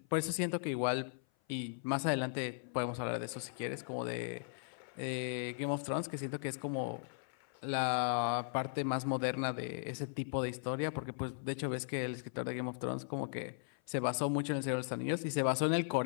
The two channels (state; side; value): silent; right; 53 dB below the other